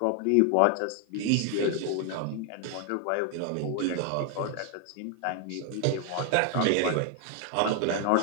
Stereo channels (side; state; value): both; different; correlation 0.00